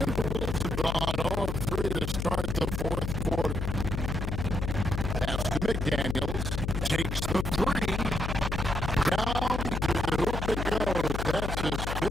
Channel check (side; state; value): left; noise; hum, 2 dB below the sound